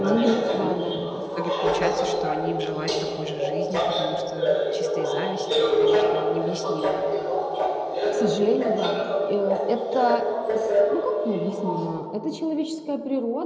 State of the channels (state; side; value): identical; both; correlation 1.00